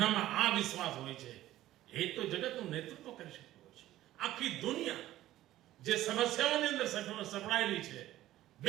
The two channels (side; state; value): left; quieter; 14.6 dB